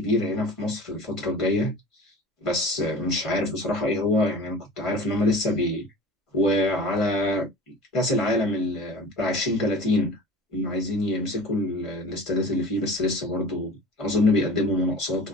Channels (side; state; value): both; normal; correlation 0.39